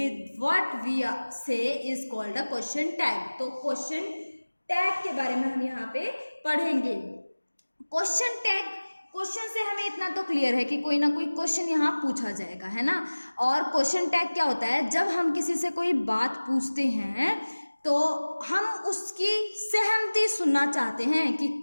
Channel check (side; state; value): both; inverted; correlation -1.00